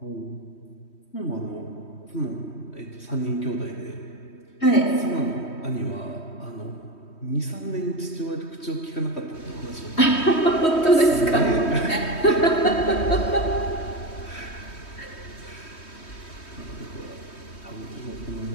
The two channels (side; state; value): right; late; 3.1 ms